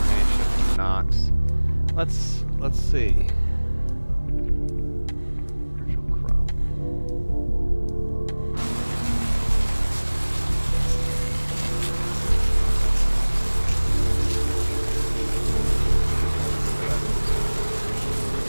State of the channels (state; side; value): inverted; both; correlation -1.00